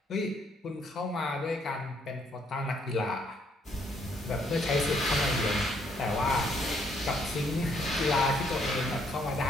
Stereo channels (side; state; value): both; normal; correlation 0.69